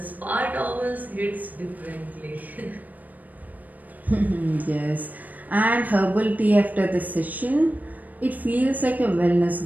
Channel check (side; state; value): left; late; 0.080 ms